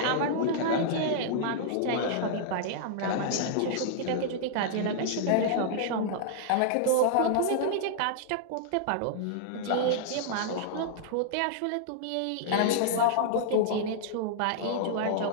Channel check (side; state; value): both; different; correlation -0.01